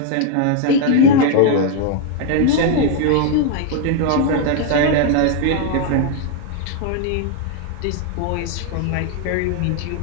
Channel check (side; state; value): both; different; correlation 0.00